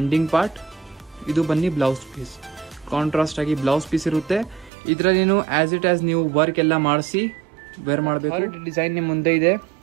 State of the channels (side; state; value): left; drops out; at 4.7 s